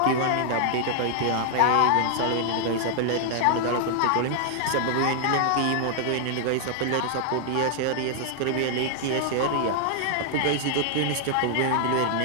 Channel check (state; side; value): different; both; correlation -0.01